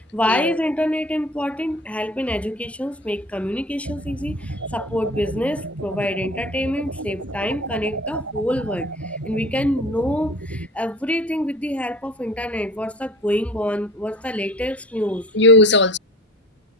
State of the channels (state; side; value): normal; both; correlation 0.42